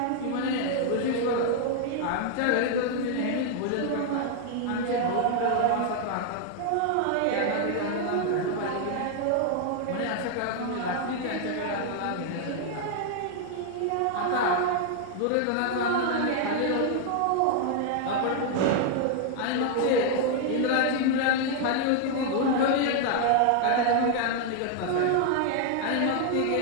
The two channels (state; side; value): different; both; correlation 0.00